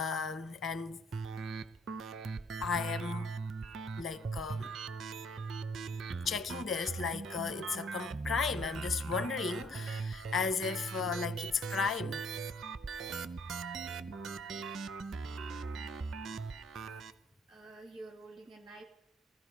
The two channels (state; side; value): normal; both; correlation 0.62